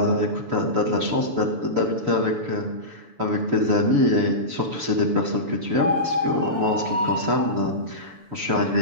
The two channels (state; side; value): late; left; 6.9 ms